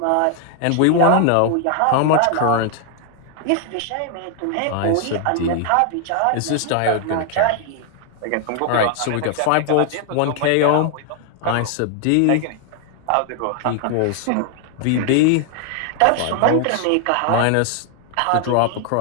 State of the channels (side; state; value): both; different; correlation 0.00